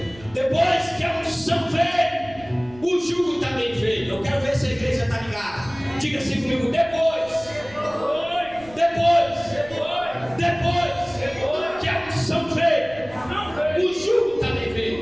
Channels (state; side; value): noise; right; rumble, 21 dB below the sound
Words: Depois que a unção veio, o jugo também veio. Eu quero ver se a igreja está ligada. Diga assim comigo, depois que a unção veio, o jugo também